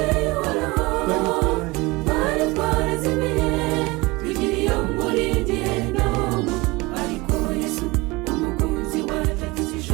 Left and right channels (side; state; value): left; quieter; 23.3 dB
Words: y'Uhoraho, twari twarazimiye tugira iyo muri Gehinomu, ariko Yesu umukunzi wacu